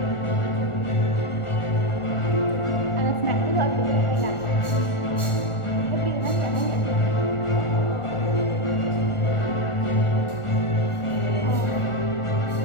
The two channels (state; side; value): late; right; 1.4 ms